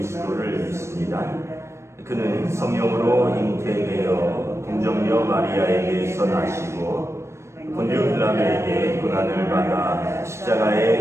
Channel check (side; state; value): left; late; 0.13 ms